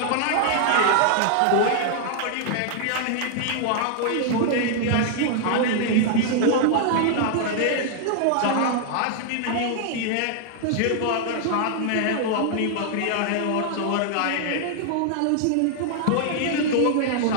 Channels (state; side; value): different; both; correlation -0.01